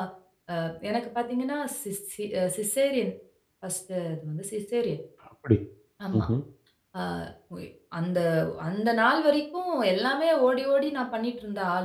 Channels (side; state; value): both; identical; correlation 1.00